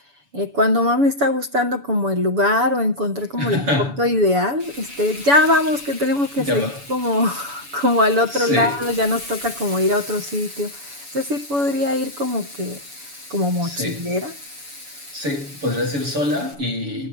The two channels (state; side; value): late; left; 7.0 ms